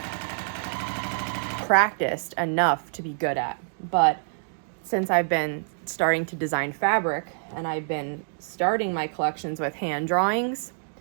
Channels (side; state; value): left; silent; 61 dB below the other